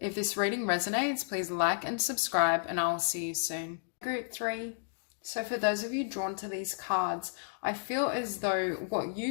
this reading resonates, please like and subscribe, and I'll see you soon. Group 3. So for those of you drawn to these cards, I feel as though what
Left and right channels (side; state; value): right; silent; digital silence